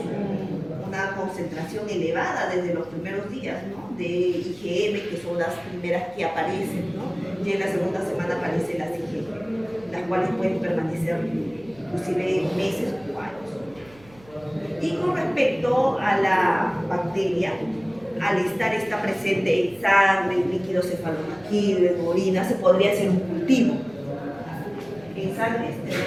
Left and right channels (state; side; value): noise; right; hum, 25 dB below the sound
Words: una concentración elevada desde los primeros días, ¿no? De IgM, que son las primeras que aparecen, ¿no? Y en la segunda semana aparecen las IgM, las cuales pueden permanecer inclusive meses o años. Y con respecto a la bacteria, al estar esta presente en sangre, en líquido cefalorraquídeo, en orina, se podría hacer un cultivo. En sangre,